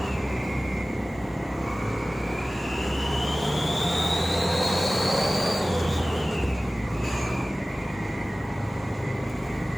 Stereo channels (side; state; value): both; normal; correlation 0.97